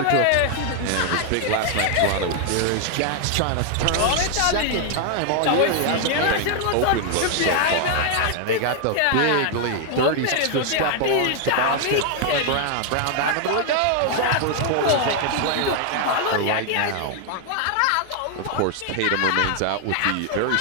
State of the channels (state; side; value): different; both; correlation 0.00